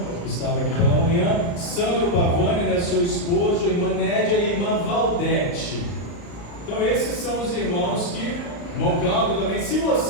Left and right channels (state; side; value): late; right; 35 ms